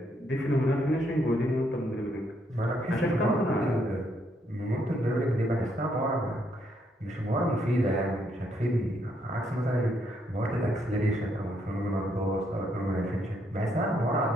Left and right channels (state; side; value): normal; both; correlation 0.74